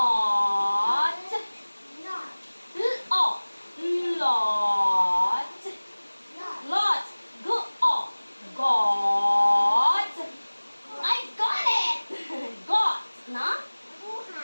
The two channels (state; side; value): inverted; both; correlation -1.00